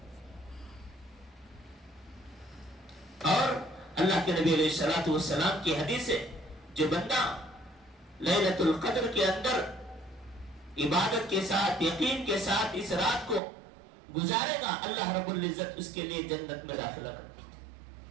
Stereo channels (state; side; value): drops out; left; at 13.4 s